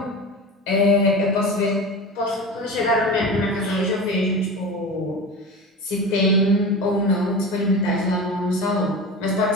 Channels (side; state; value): both; normal; correlation 0.30